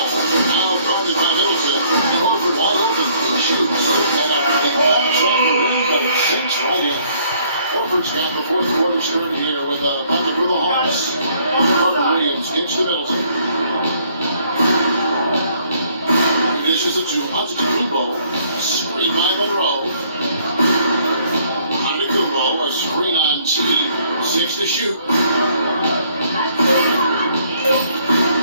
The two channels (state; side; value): inverted; both; correlation -0.64